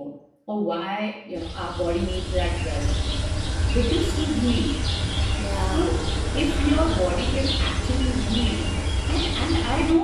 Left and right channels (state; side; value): identical; both; correlation 1.00